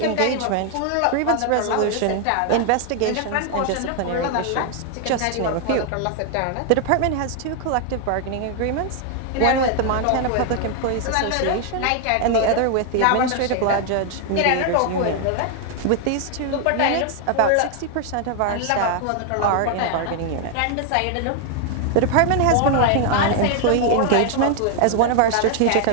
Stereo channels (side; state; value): both; different; correlation 0.00